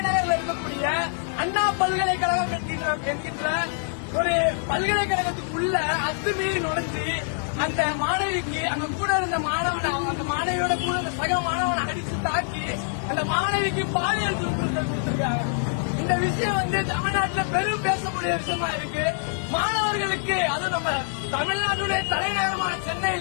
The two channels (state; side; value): silent; right; digital silence